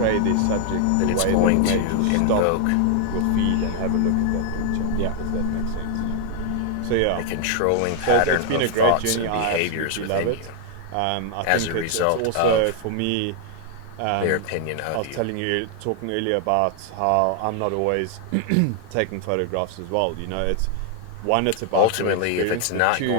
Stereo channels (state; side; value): different; both; correlation 0.00